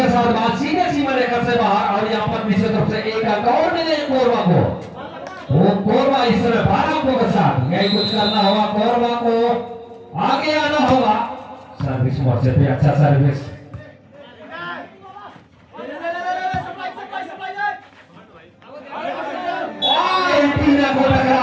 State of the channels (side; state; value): both; identical; correlation 1.00